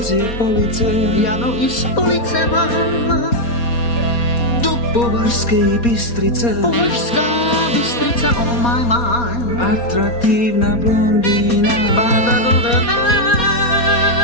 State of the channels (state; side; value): late; right; 4.2 ms